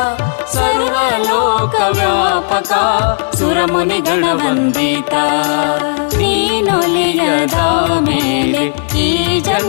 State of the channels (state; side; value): silent; right; digital silence